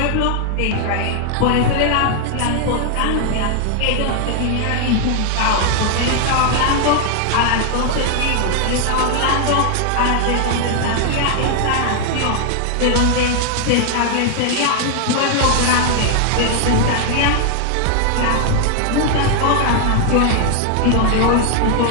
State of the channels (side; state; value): both; different; correlation 0.00